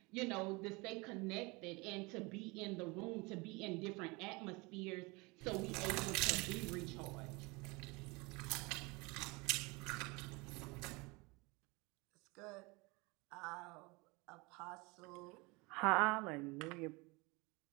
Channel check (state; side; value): quieter; left; 26.2 dB